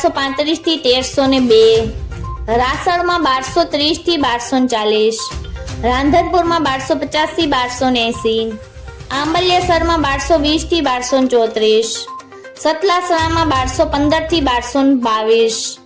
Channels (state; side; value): identical; both; correlation 1.00